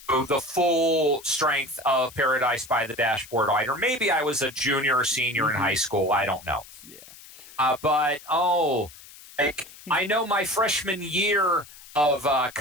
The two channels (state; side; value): noise; left; hiss, 19 dB below the sound